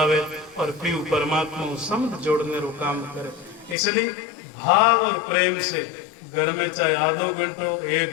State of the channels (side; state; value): right; drops out; at 3.8 s